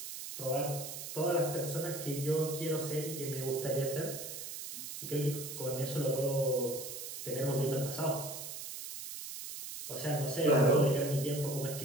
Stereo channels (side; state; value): right; noise; hiss, 8 dB below the sound